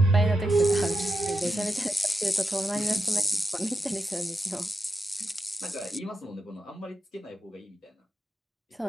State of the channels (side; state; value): both; normal; correlation 0.88